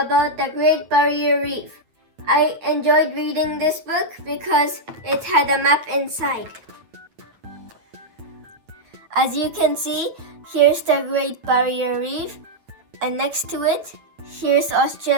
the Great Barrier Reef. I enjoyed reading this book because it had a map inside. As you can see, here's the Great Barrier Reef, and next to it, here's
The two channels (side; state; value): left; late; 8.9 ms